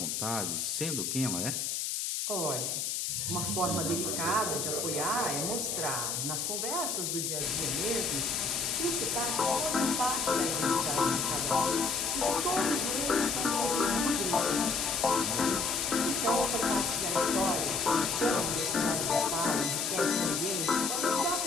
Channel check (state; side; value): noise; left; hiss, 1 dB below the sound